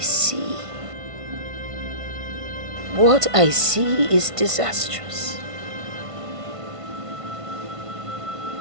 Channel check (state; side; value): late; left; 1.5 ms